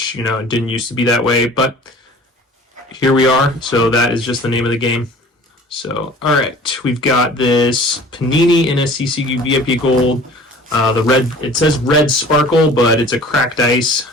it didn't used to be that way, but here we are. So that is just the name of the game. So all right, we've got this Panini NSCCU VIP Gold. The red, it says red sparkle, but it's a cracked ice.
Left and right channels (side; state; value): both; normal; correlation 0.46